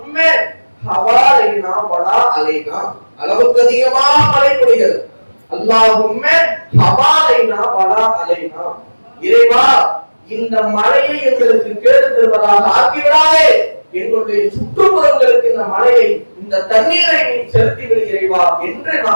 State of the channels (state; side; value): inverted; both; correlation -1.00